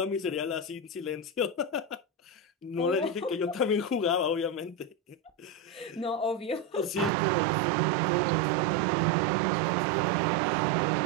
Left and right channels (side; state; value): left; drops out; at 7.1 s